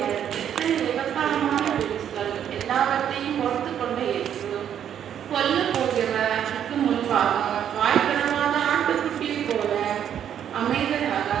எத்தனை விபத்தாரமான பேச்சுகள் எல்லாவற்றையும் பொறுத்து கொண்ட இயேசு கொல்ல போகிறவருக்கு முன்பாக வாய்ப்பிடமாத ஆட்டுக்குட்டியை போல அமைதியாக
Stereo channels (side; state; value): left; quieter; 9.4 dB